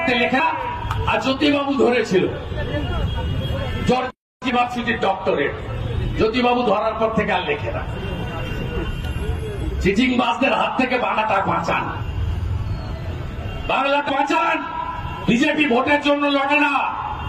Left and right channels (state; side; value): identical; both; correlation 1.00